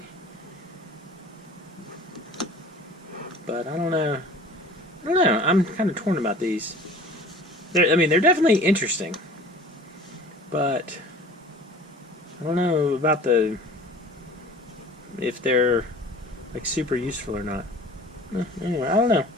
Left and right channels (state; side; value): normal; both; correlation 0.44